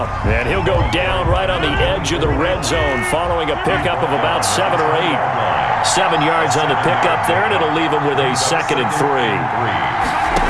and he'll go down right on the edge of the red zone following a pickup of about 7 or 8. 7 yards on the pickup there, and it'll leave him with a 2nd and 3.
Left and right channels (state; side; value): identical; both; correlation 1.00